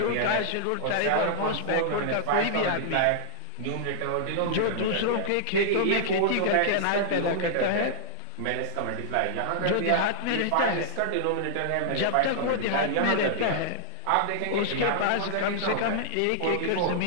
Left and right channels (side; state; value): both; different; correlation -0.01